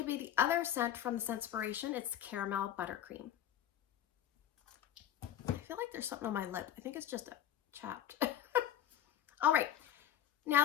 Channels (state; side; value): quieter; right; 11.0 dB